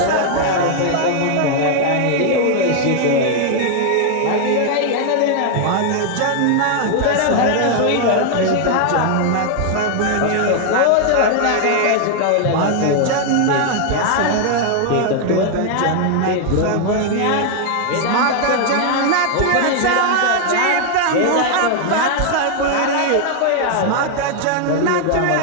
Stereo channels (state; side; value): different; both; correlation 0.00